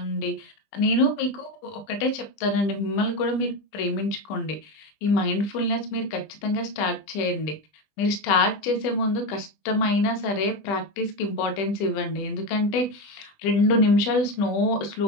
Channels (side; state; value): right; late; 20 ms